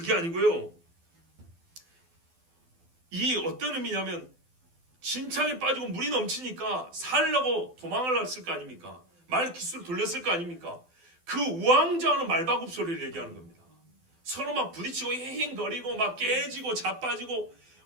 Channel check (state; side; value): late; left; 12 ms